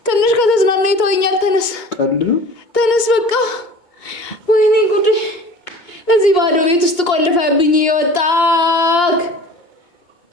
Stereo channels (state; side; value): late; right; 2.2 ms